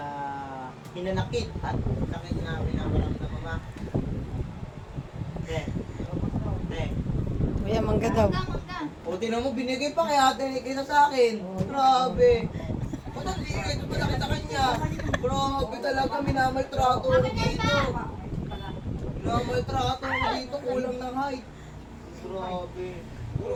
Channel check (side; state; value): both; identical; correlation 1.00